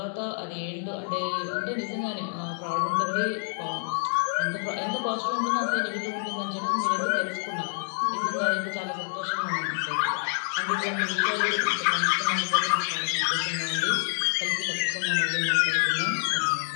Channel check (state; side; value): silent; right; 60 dB below the other